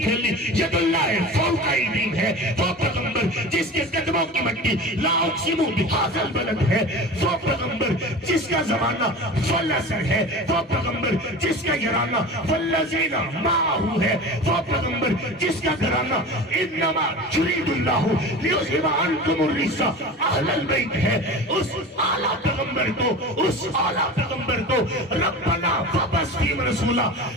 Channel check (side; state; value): both; normal; correlation 0.33